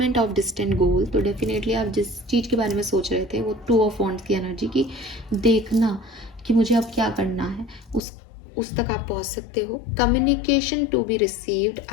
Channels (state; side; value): drops out; right; at 8.0 s